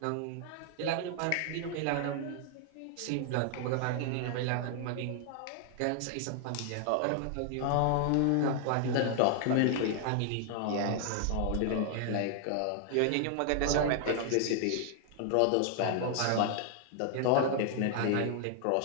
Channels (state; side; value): different; both; correlation 0.00